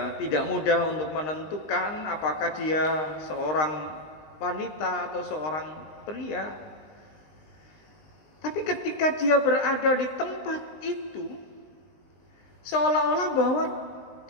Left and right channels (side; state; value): right; late; 19 ms